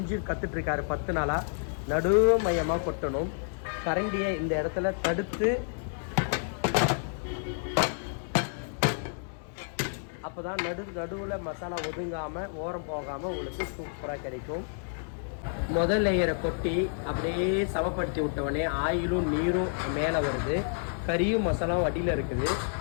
கற்றுட்ருக்காரு 10 நாளாக. நடு மையமாக கொட்டணும். கரண்டியை இந்த இடத்துல தடுத்து அப்போ தான் நடுவில் மசாலா ஒதுங்காமல் ஓரம் போகாமல் உங்களுக்கு சூப்பராக கிடைக்கும். முதல் லேயரை கொட்டி அப்படியே சமப்படுத்தி விட்டவொடனே ஆயிலும் நீரும் மேலே வருது, கறியும் மசாலாவும் அடியில் இருக்குது.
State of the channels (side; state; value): right; silent; digital silence